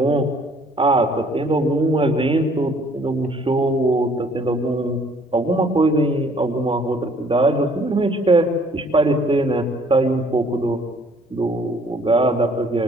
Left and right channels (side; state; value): both; normal; correlation 0.59